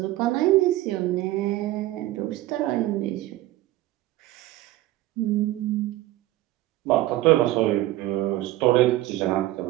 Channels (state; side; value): quieter; left; 16.3 dB